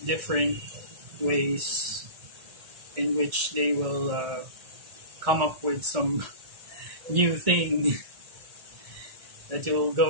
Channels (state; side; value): late; left; 1.8 ms